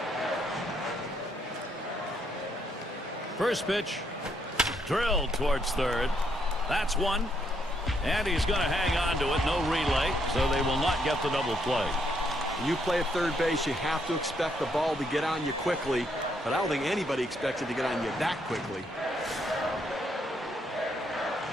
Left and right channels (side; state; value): both; normal; correlation 0.73